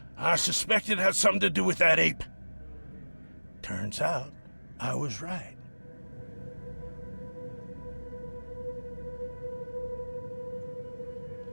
I suspected it had something to do with that ape. Turns out, I was right.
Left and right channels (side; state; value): both; inverted; correlation -1.00